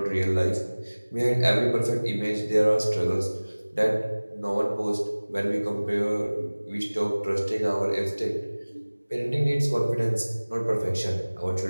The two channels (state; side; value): inverted; both; correlation -1.00